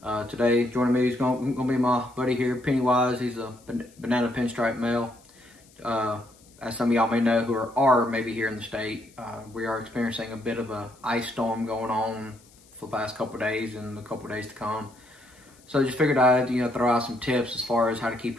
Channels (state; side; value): noise; left; hiss, 28 dB below the sound